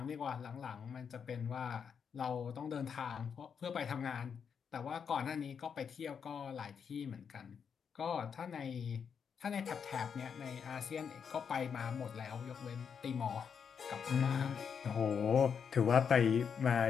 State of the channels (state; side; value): quieter; right; 6.9 dB